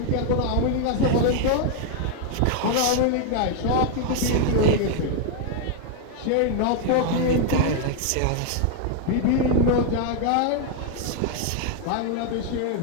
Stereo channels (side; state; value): both; different; correlation 0.00